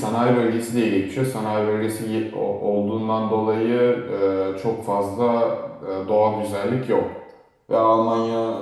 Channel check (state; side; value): identical; both; correlation 1.00